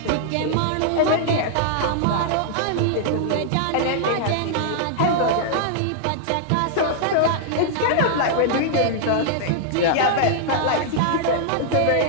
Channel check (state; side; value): different; both; correlation -0.01